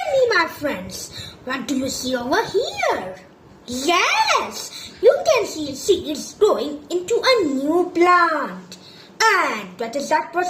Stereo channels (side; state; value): both; identical; correlation 1.00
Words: me, my friends, what do you see over here? Yes, you can see seeds growing into a new plant. And what is that